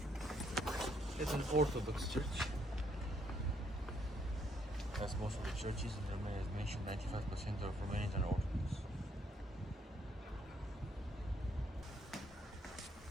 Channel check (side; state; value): both; normal; correlation 0.71